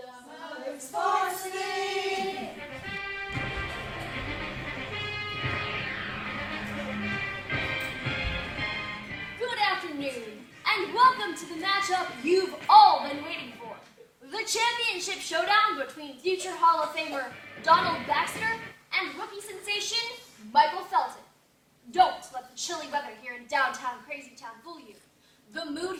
Sports Thing. Good afternoon, and welcome to the matchup you've all been waiting for. The championship showdown between future Hall of Famer Donald Baxter and rookie sensation Michael Felton. Don't let the chilly weather here in downtown Crazytown fool you. The mood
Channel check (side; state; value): both; identical; correlation 1.00